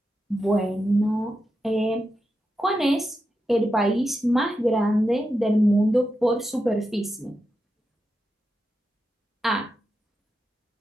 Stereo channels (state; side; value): normal; both; correlation 0.88